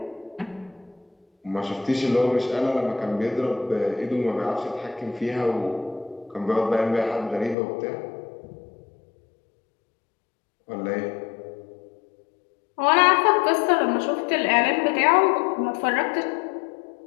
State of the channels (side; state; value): right; drops out; at 7.6 s